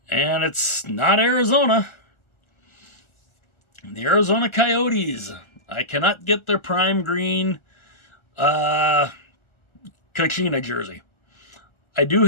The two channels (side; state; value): right; late; 1.4 ms